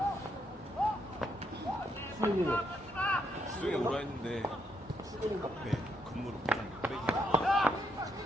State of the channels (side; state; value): both; normal; correlation 0.76